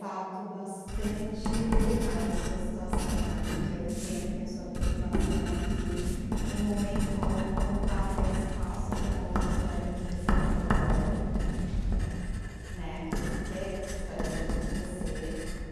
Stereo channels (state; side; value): identical; both; correlation 1.00